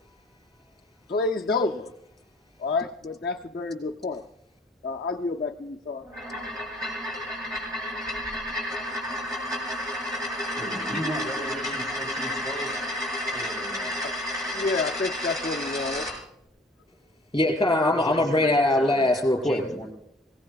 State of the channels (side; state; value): both; normal; correlation 0.52